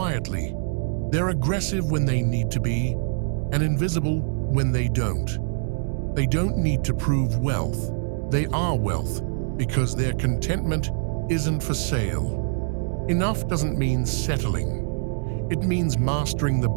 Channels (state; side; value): silent; left; digital silence